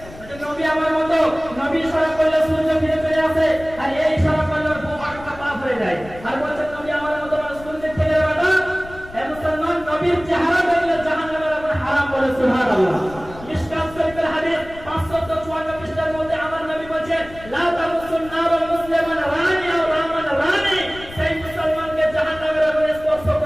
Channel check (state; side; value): noise; left; rumble, 17 dB below the sound